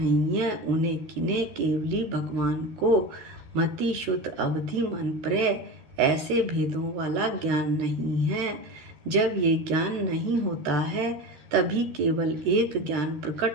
है। उन्हें किन्हें? केवली भगवान को मति शुद्ध अवधि मन प्रय ऐसे भेदों वाला ज्ञान नहीं है। जब ये ज्ञान नहीं होता है तभी केवल एक ज्ञान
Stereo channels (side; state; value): left; late; 13 ms